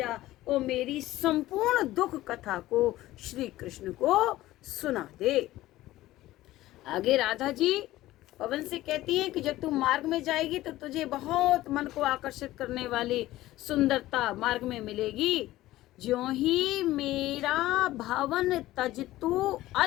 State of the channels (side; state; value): right; quieter; 16.2 dB